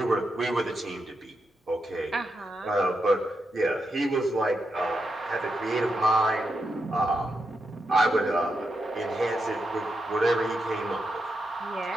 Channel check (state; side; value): normal; both; correlation 0.85